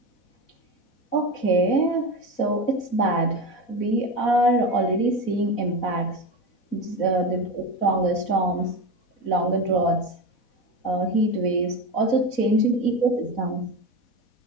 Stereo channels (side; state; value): right; late; 4.1 ms